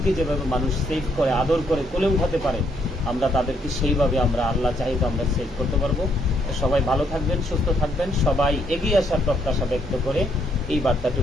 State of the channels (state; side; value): normal; both; correlation 0.72